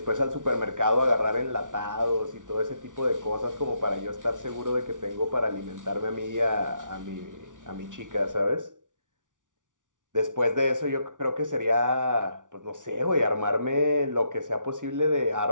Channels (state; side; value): late; left; 0.87 ms